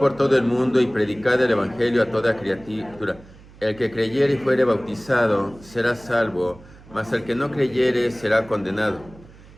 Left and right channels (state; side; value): noise; right; hum, 22 dB below the sound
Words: todo el mundo y predicad el evangelio a toda criatura. El que creyere y fuere bautizado será salvo, mas el que no creyere será condenado.